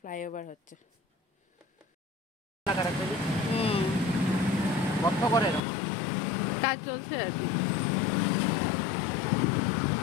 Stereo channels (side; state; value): right; drops out; at 5.6 s